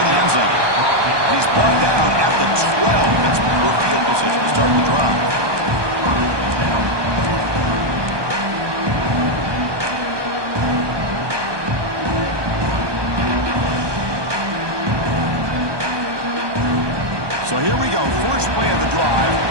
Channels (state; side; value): late; left; 1.2 ms